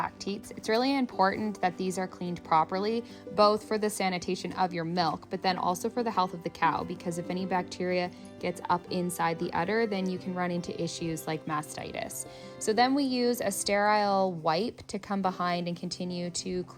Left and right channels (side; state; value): both; identical; correlation 1.00